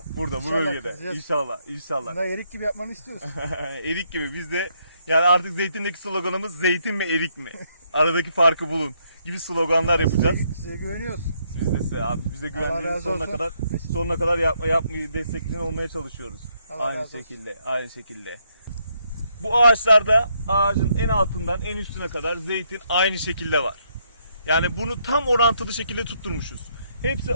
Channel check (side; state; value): both; inverted; correlation -0.74